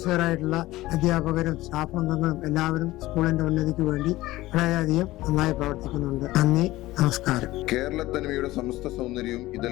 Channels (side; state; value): right; quieter; 17.5 dB